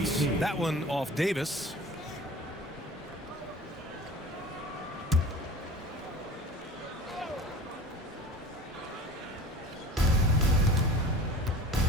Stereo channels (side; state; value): both; normal; correlation 0.40